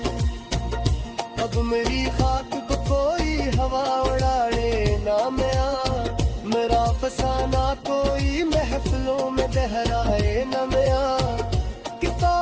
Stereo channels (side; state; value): both; identical; correlation 1.00